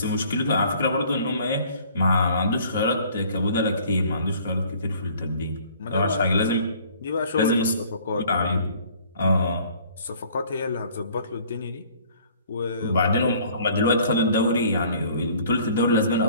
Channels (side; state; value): both; inverted; correlation -0.55